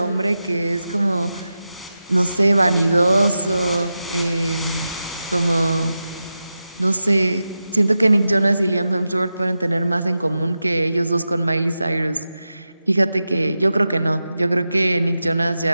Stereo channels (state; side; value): inverted; both; correlation -0.91